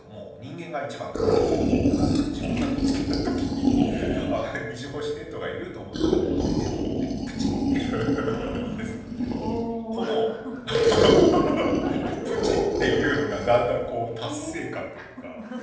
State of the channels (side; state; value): both; identical; correlation 1.00